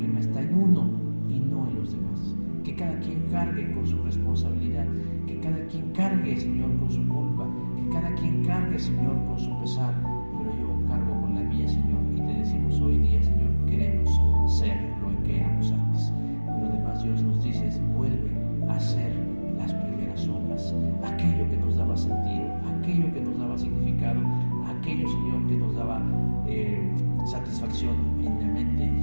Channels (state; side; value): inverted; both; correlation -1.00